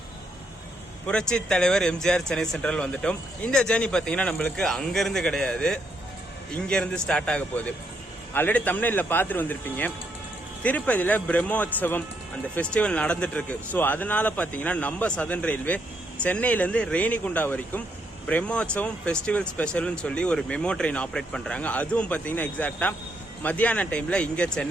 புரட்சி தலைவர் எம்ஜிஆர் சென்னை சென்ட்ரல் வந்துட்டோம். இந்த ஜேர்னி பார்த்தீங்கன்னா நம்மளுக்கு அங்கேருந்து கிடையாது, இங்கேருந்து ஸ்டார்ட் ஆக போகுது. ஆல்ரெடி தமிழ்நாட்டில் பார்த்துட்டு வந்திருப்பீங்க. திருப்பதியில் பிரம்மோற்சவம் அந்த ஃபெஸ்டிவல் நடந்துட்டு இருக்கு. ஸோ அதனால பார்த்தீங்கன்னா நம்ம சதர்ன் ரயில்வே சென்னையிலேருந்து ரேணிகுண்டா வரைக்கும் பிரம்மோற்சவம் ஃபெஸ்டிவல் ஸ்பெஷல்னு சொல்லி ஒரு மெமோ ட்ரெயின் ஆப்ரேட் பண்ணுறாங்க. அதுவும் பார்த்தீங்கன்னா எக்ஸாக்டாக மத்தியான டைமில் இங்கே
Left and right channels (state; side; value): normal; both; correlation 0.76